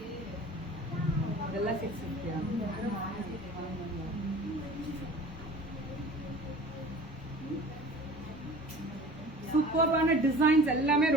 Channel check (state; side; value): normal; both; correlation 0.43